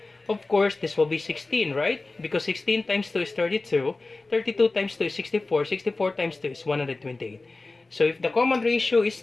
Of course, this will be 16, right? Because 16 times 2 is 32. 32 times 2 is 64. 64 times 2 is 128. So if the common ratio is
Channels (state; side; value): quieter; right; 3.4 dB